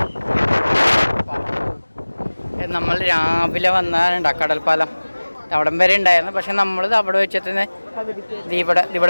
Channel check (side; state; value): both; inverted; correlation -1.00